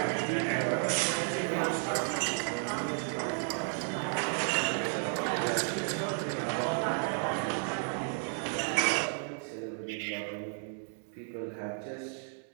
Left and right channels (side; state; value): left; silent; 56 dB below the other